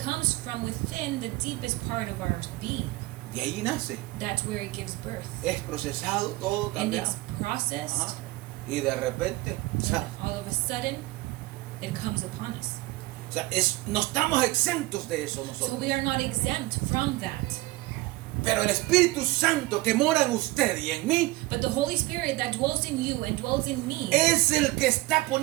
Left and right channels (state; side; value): quieter; left; 20.1 dB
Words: comes from within the deepest part of our being. De ahí nace. That's where it gives birth. Es procesado, todo And cambiado. it's processed, Ajá. Y de repente, and all of a sudden, it comes upon us. no estamos exentos de eso So nosotros. we are not exempt from that. Pero el Espíritu Santo que mora en usted y en mí But the Holy Spirit that dwells in you and dwells in me, es el que está